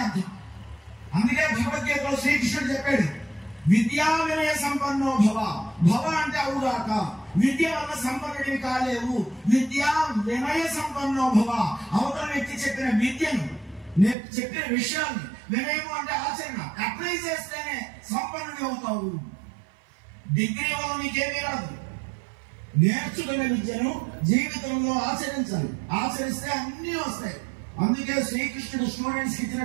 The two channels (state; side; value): drops out; left; at 14.2 s